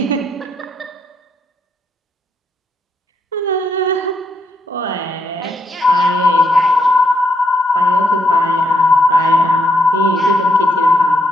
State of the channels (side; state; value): both; normal; correlation 0.76